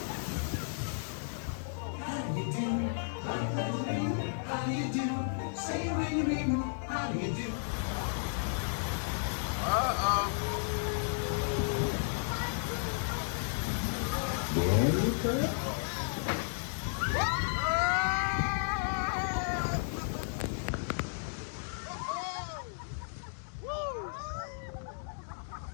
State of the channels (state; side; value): silent; right; digital silence